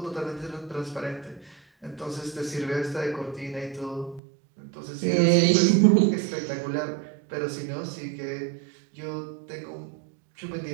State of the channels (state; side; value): drops out; left; at 4.2 s